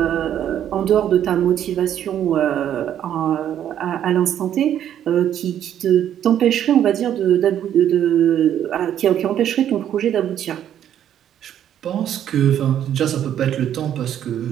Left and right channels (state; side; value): quieter; left; 10.4 dB